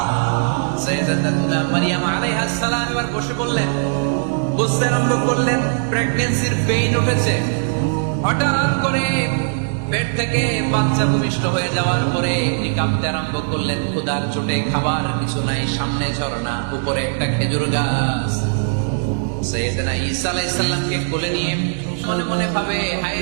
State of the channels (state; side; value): silent; left; digital silence